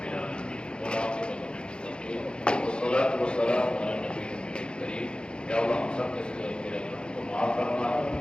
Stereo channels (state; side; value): late; right; 0.052 ms